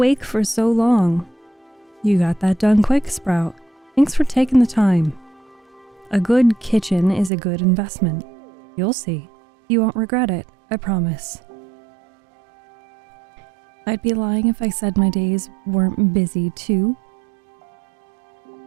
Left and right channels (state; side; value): drops out; left; at 7.3 s